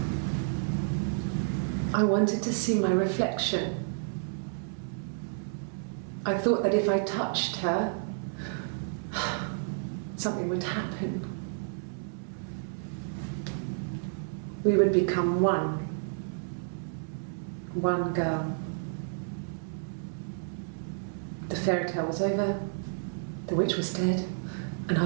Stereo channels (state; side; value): silent; left; 57 dB below the other